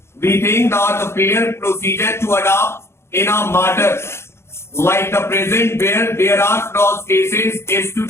We think that the fair procedure to adopt in a matter like the present where there are cross cases is to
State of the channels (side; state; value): right; late; 0.12 ms